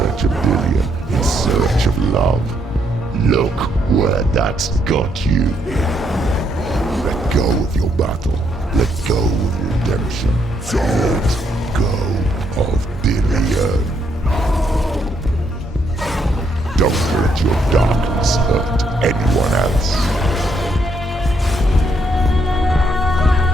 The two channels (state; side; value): normal; both; correlation 0.74